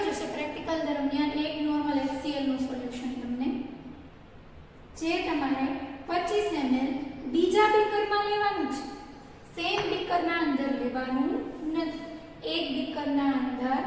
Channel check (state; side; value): identical; both; correlation 1.00